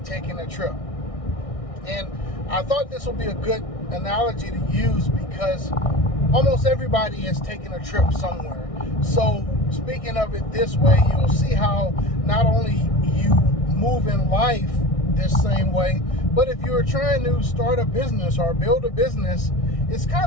taking a trip. And I thought this would be a good analogy to use because almost everybody is taking a trip somewhere. So speaking of it this way, you'll see how not only you move in life this same way, but if you're trying to start a business or build a business, it's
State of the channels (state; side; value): late; right; 1.6 ms